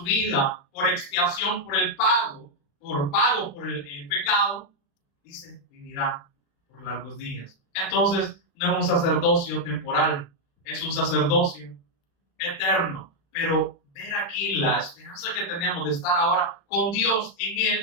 vida por expiación, por el pago, por el pecado, dice, vivirá por largos días. Entonces, no es un sacerdocio temporal, es un sacerdocio eterno. Pero ver aquí la esperanza que tenemos de estar ahora con Dios en Él,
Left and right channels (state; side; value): late; right; 35 ms